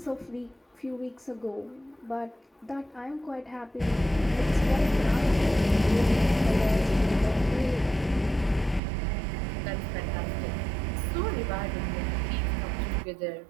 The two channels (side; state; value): left; drops out; at 8.8 s